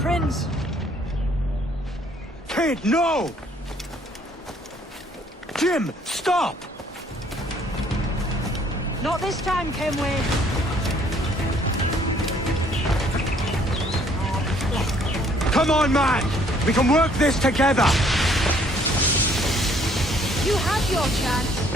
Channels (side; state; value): both; normal; correlation 0.62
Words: Kid, no! Jim, stop! Not this time, Kenway. Come on, man! We can work this together! You had your chance.